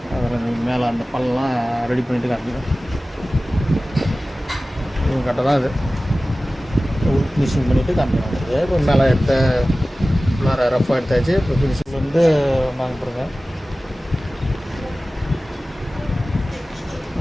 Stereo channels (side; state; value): both; normal; correlation 0.97